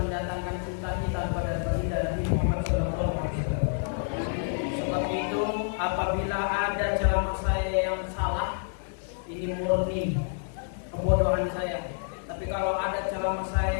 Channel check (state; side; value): silent; right; digital silence